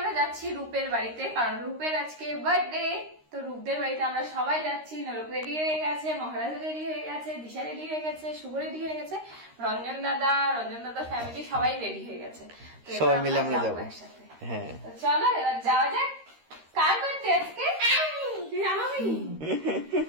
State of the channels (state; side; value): late; left; 13 ms